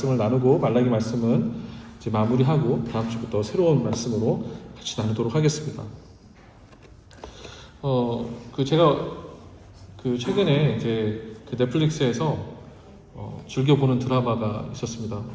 나누고 말라기 말씀은 이제 마무리하고 다음 주부터 새로운 말씀으로 같이 나누도록 하겠습니다. 제가 최근에 이제 넷플릭스에서 즐겨보는 드라마가 있었습니다.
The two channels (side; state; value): both; identical; correlation 1.00